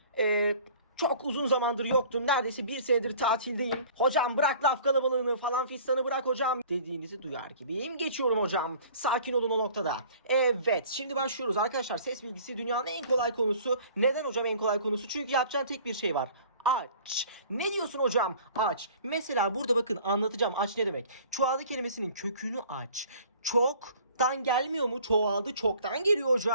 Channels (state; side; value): inverted; both; correlation -0.49